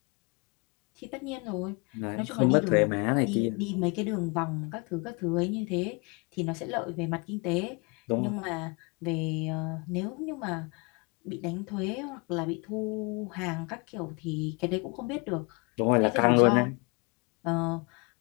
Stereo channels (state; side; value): quieter; right; 30.9 dB